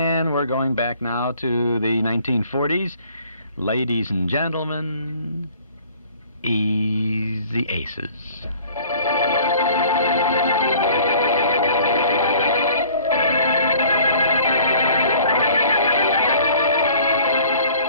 we're going back now to the 1940s. Ladies and gentlemen, Easy Aces.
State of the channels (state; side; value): inverted; both; correlation -0.52